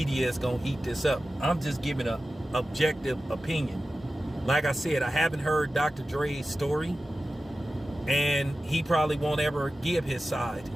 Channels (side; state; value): both; normal; correlation 0.94